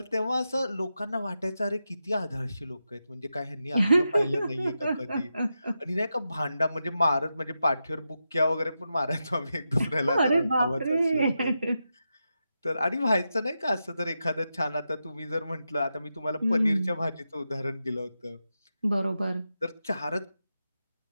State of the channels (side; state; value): both; inverted; correlation -0.88